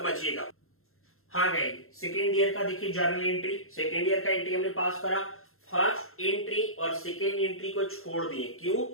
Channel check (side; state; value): right; late; 0.62 ms